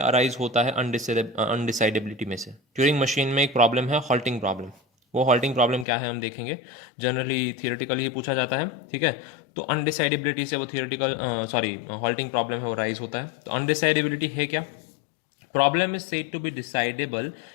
अराइज होता है अनडिसाइडेबिलिटी में से। ट्यूरिंग मशीन में एक प्रॉब्लम है हॉल्टिंग प्रॉब्लम। वो हॉल्टिंग प्रॉब्लम क्या है हम देखेंगे। जनरली थियोरेटिकली ही पूछा जाता है। ठीक है, तो अनडिसाइडेबिलिटी से वो थियोरेटिकल सॉरी हॉल्टिंग प्रॉब्लम है वो राइज होता है। तो अनडिसाइडेबिलिटी है क्या? Problem is said to be decidable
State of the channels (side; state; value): right; drops out; at 5.9 s